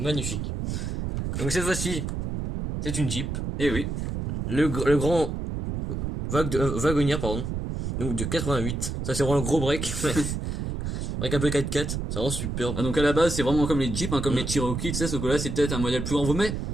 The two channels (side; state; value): right; noise; rumble, 3 dB below the sound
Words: Donc cette fois-ci, c'est une Jeep. Et oui, Le grand wagonnier, pardon. Donc de 88. Ça, c'est vraiment le gros break. Avec un peu 4x4. C'est vraiment superbe. ah, donc à la base c'est vraiment comme les Jeeps, hein, comme Mm. les Cherokee, tu sais, sauf que là c'est peut-être un modèle plus grand.